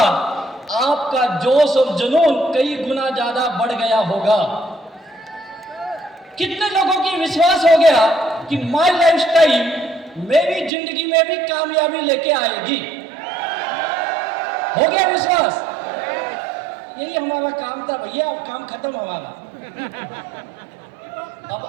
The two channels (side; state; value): left; drops out; at 10.7 s